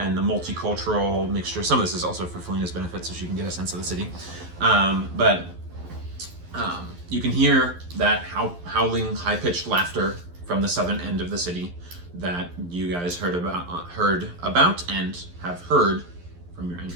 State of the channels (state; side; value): late; left; 11 ms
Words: the multicultural mixture. Some of this is also for Felina's benefit, so she can get a sense of the city. You can hear that howling, high-pitched laughter from the southern end of the city that you guys heard about and have heard from your